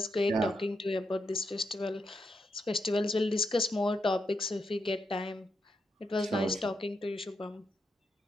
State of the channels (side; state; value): both; normal; correlation 0.82